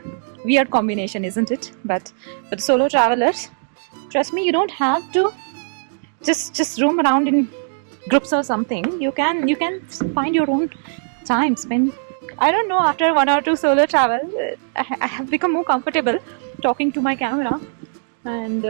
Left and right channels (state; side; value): silent; left; digital silence